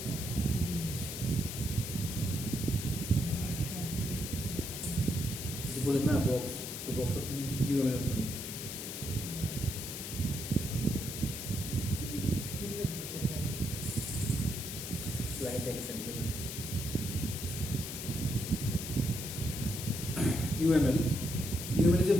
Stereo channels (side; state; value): left; noise; hiss, 6 dB below the sound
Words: কি জিনিস যে বলেন না বক্স ওই বক্সটা কি ইউএমএল এর জন্য কি লিখবো কোথায় স্লাইড দেখতে লিখবেন UML is a